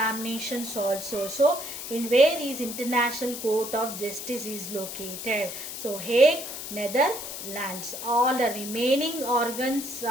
also. So in where is International Court of Justice is located? So Hague, Netherlands. All the remaining organs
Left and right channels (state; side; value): noise; left; hiss, 8 dB below the sound